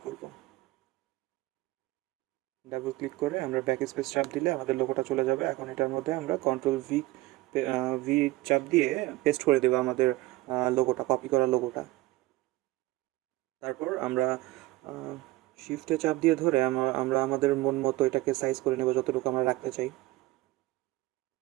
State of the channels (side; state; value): left; quieter; 18.7 dB